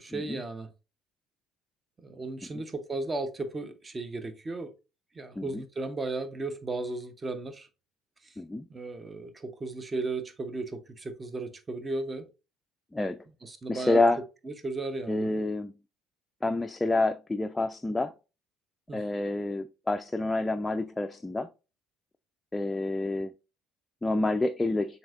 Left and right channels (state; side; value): normal; both; correlation 0.89